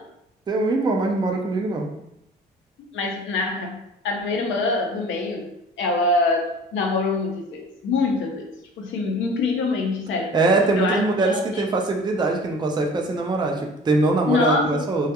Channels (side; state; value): both; normal; correlation 0.45